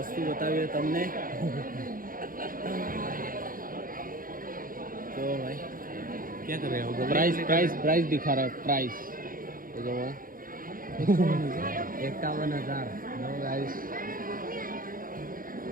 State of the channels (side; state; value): left; late; 0.41 ms